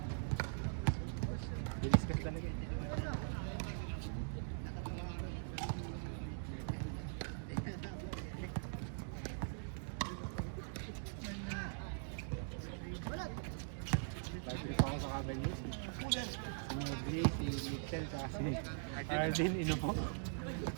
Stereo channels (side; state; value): left; silent; digital silence